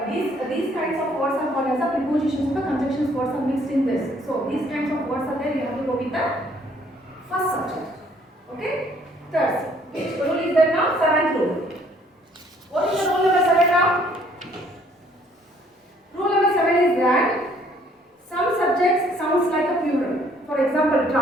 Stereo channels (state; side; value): normal; both; correlation 0.62